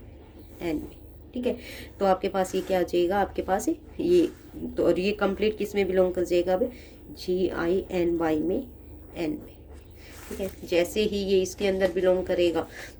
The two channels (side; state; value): both; identical; correlation 1.00